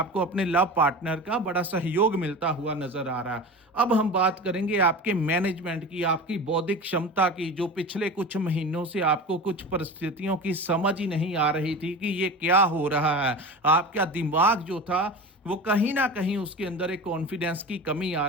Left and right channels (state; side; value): normal; both; correlation 0.31